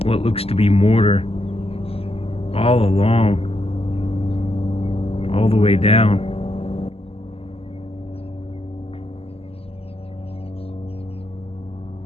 what looks to be mortar all along, all the way down.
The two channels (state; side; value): late; right; 0.29 ms